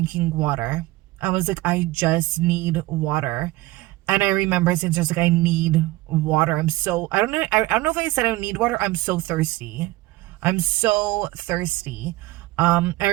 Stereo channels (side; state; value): left; quieter; 18.9 dB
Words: water. I was like, I just need water. And I remember saying to her, like, I need water. I don't know. I don't know if I said I need water. I'm so thirsty. I'm so thirsty. I